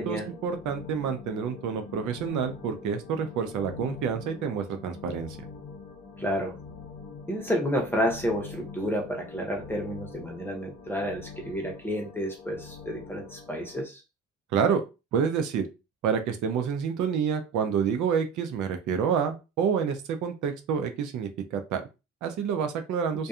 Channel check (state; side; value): quieter; left; 4.3 dB